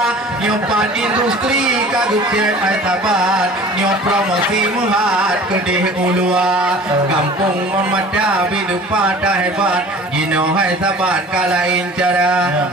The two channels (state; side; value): normal; both; correlation 0.44